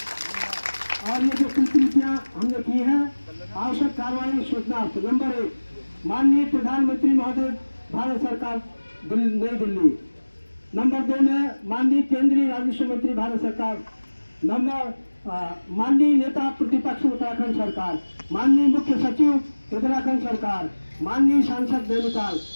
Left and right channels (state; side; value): inverted; both; correlation -1.00